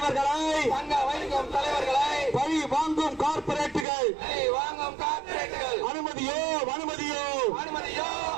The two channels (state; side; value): drops out; left; at 3.9 s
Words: பழி வாங்கும் கார்ப்பரேட்டுகள் அனுமதியோ